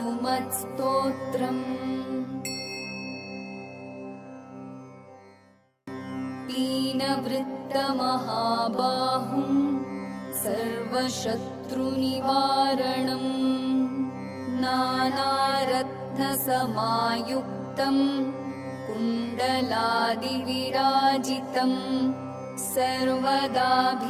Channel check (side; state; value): both; identical; correlation 1.00